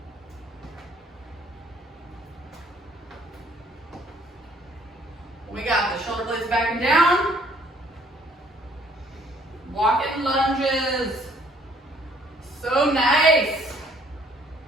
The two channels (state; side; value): normal; both; correlation 0.62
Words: We got the shoulder blades back and down. Walking lunges. So nice.